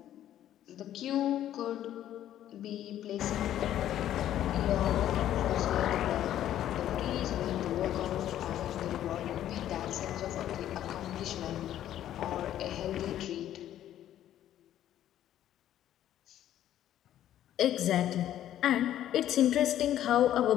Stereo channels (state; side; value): quieter; right; 11.8 dB